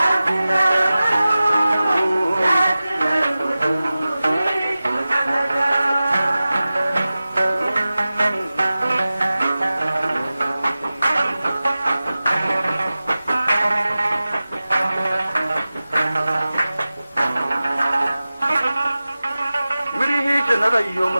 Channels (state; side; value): inverted; both; correlation -0.96